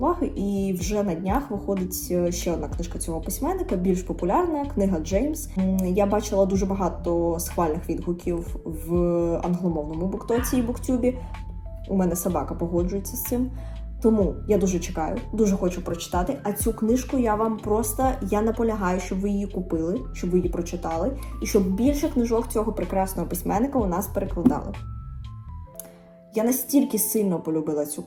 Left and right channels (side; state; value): both; identical; correlation 1.00